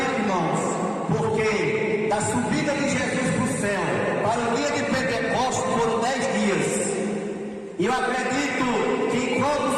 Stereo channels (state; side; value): identical; both; correlation 1.00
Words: irmãos, porque da subida de Jesus para o céu para o dia de Pentecostes foram 10 dias. E eu acredito que enquanto os